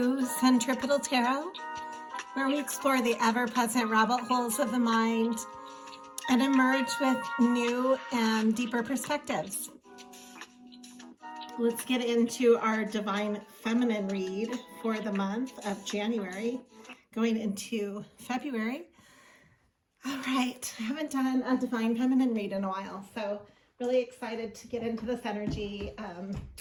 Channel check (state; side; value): identical; both; correlation 1.00